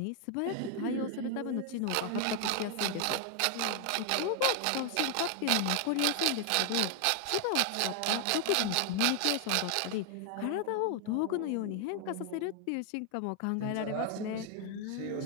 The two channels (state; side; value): different; both; correlation 0.00